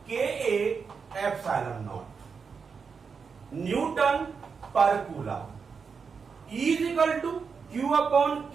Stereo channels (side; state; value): left; quieter; 5.7 dB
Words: Ka epsilon naught Newton per coulomb. E is equal to Q upon